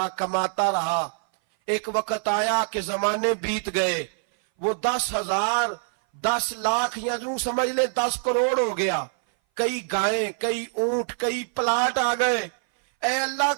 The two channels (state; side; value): silent; left; 59 dB below the other